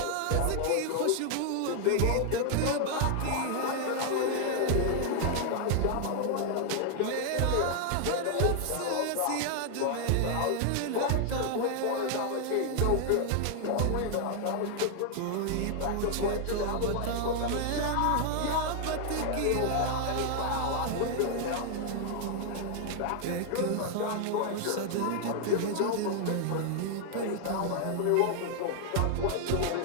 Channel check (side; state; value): both; different; correlation 0.00